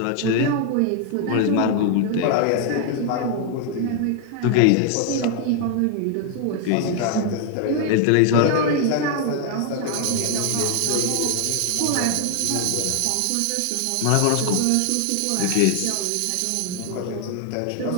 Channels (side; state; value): both; different; correlation 0.00